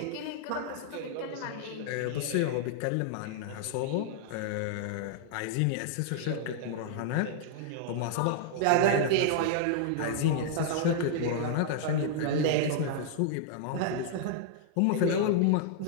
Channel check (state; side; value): different; both; correlation -0.01